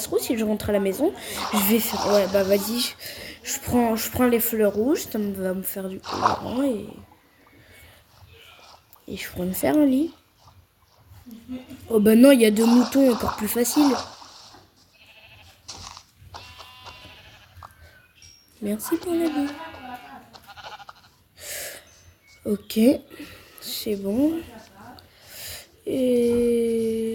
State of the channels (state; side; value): identical; both; correlation 1.00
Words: trouve si je rentre à la maison, je vais faire... Ouais, bah vas-y, je prends les fleurs rouges, ça va me faire du colorant et je pourrais me faire un lit. Oh bah non, il y a 2 moutons, encore plus facile. Merci pour la vie. Ok, c'est bon.